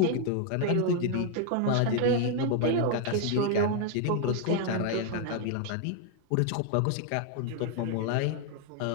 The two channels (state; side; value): different; both; correlation 0.00